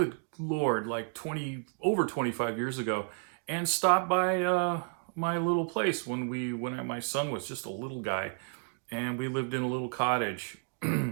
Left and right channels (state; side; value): silent; left; 57 dB below the other